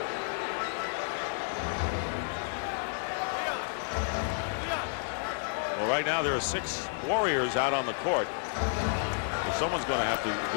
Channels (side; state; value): right; silent; 57 dB below the other